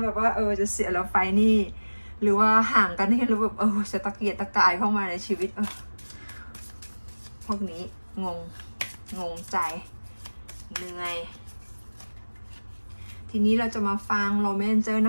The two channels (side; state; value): both; inverted; correlation -1.00